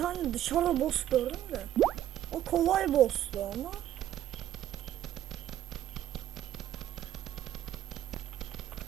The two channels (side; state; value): left; quieter; 12.0 dB